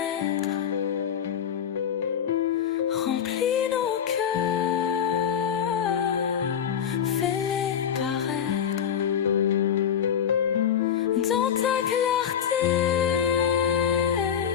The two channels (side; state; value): right; quieter; 8.6 dB